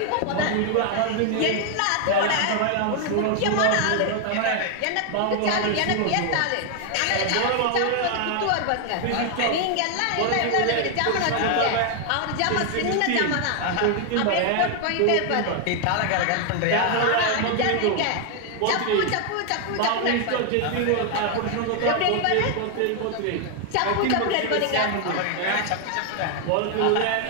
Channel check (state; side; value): different; both; correlation 0.00